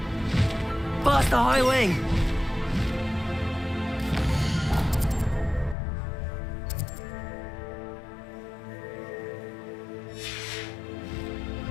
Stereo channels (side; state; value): right; drops out; at 5.8 s